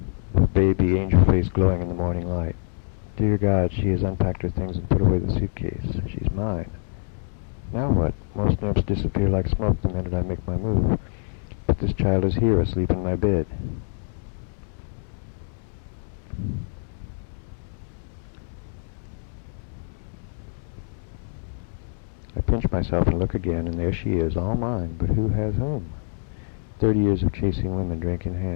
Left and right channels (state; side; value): silent; right; digital silence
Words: with baby angel face glowing in the morning light. Dear God, she has unpacked her things and put away the suitcase. She's mine. Now what? Most nymphs disappear like smoke the minute I make my move. But this child is here, asleep in my bed. I pinch myself and look again, and there she is, all mine. But who has whom? 30 years of chasing women, drink in